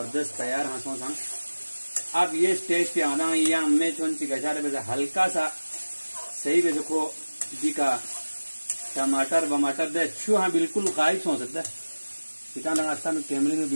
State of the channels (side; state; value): both; inverted; correlation -1.00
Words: तैयार हाँ सो संग। अब ये स्टेज पे आना या मैं चुन ची गचारे पे हल्का सा सही पे देखो जी का टमाटर बमाटर दे छू हाँ बिल्कुल गायब हो सकता है। इतना रास्ता में कैमरे में